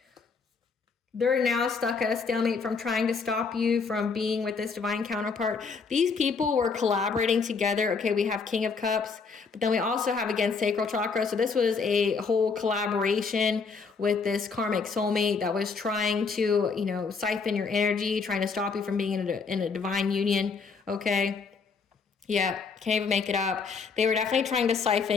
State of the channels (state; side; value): quieter; right; 5.0 dB